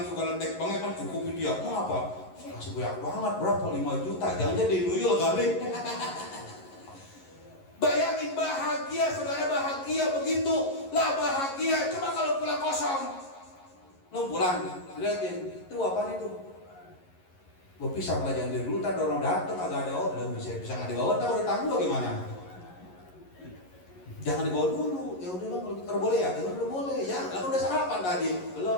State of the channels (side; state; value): right; late; 11 ms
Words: segala dek banget kan cukup dia. Mau apa? Kasih banyak banget, berapa? 5 juta. Jangan jadi nuyul kali. Bayangin bahagia, saudara, bahagia begitu lah bahagia. Coba kalau pulang kosong, lu pulang, liatin, itu apaan itu? Gue pisah pelajaran dari dulu, ntar orang dateng agak ada orang, bisa nggak dibawa, ntar udah tangguh gimana? Jangan dibawa dulu. Ya udah bang, kalau kita boleh ya, ya udah boleh ya. Lalu udah sarapan tadi,